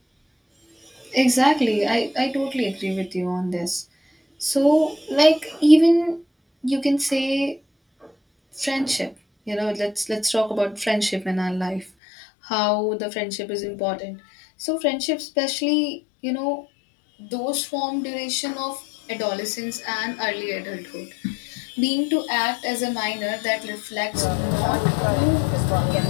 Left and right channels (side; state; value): right; drops out; at 11.9 s